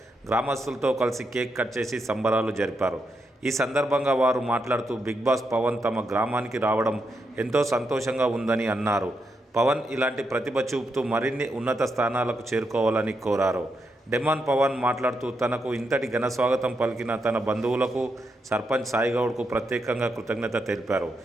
గ్రామస్తులతో కలిసి కేక్ కట్ చేసి సంబరాలు జరిపారు. ఈ సందర్భంగా వారు మాట్లాడుతూ బిగ్ బాస్ పవన్ తమ గ్రామానికి రావడం ఎంతో సంతోషంగా ఉందని అన్నారు. పవన్ ఇలాంటి ప్రతిభ చూపుతూ మరిన్ని ఉన్నత స్థానాలకు చేరుకోవాలని కోరారు. డెమాన్ పవన్ మాట్లాడుతూ తనకు ఇంతటి ఘన స్వాగతం పలికిన తన బంధువులకు, సర్పంచ్ సాయిగౌడ్కు ప్రత్యేకంగా కృతజ్ఞత తెలిపారు.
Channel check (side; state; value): both; normal; correlation 0.83